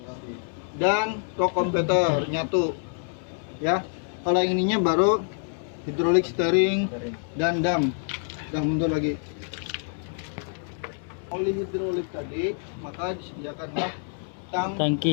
dan torque converter nyatu. Ya. Kalau yang ininya baru hidrolik steering dan dam. Dah mundur lagi. Oli hidrolik tadi maka disediakanlah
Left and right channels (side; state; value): right; silent; 60 dB below the other